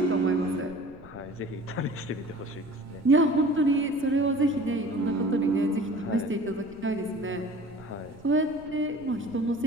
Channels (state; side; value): noise; right; rumble, 22 dB below the sound